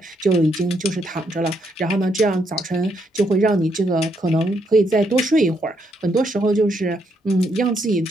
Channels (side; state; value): both; normal; correlation 0.75